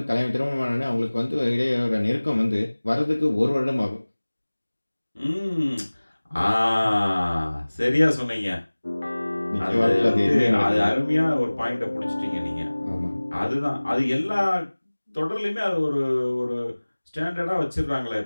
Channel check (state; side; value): inverted; both; correlation -1.00